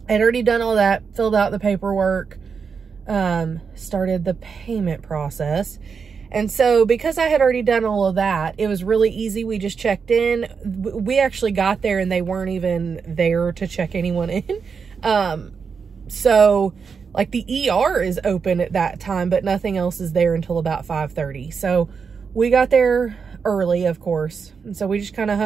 I'd already done all that, filled out the paperwork, started the payment process. And so because I had already done all of that, it was really easy. We just checked in. We actually got there and they weren't even there to check anyone in. So like the ER is open at that time, but nothing else is there until about 5:30. So we got there early, of course. And so we just kind of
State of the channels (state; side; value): quieter; left; 5.8 dB